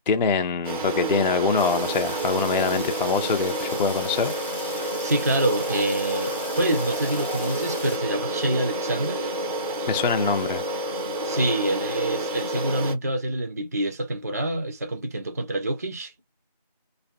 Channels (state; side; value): inverted; both; correlation -0.34